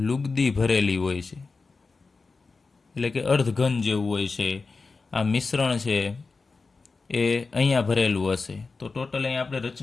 લુગદી ભરેલી હોય છે, એટલે કે અર્ધઘન જેવું હોય છે. આ મિશ્રણ છે એ અહીંયા ભરેલું હશે. તો ટોટલ અહીંયા આપણે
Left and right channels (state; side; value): quieter; right; 4.2 dB